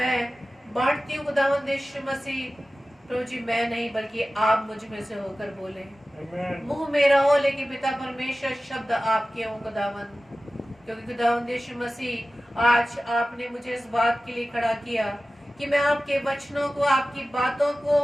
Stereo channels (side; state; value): both; normal; correlation 0.96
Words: बांटती हूँ खुदावंद यीशु मसीह, प्रभु जी मैं नहीं बल्कि आप मुझ में से होकर बोले। मुंह मेरा हो लेकिन पिता परमेश्वर शब्द आपके हो खुदावंद। क्योंकि खुदावंद यीशु मसीह आज आपने मुझे इस बात के लिए खड़ा किया कि मैं आपके वचनों को, आपकी बातों